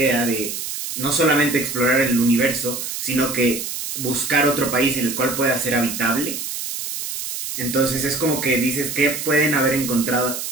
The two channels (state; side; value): noise; right; hiss, 6 dB below the sound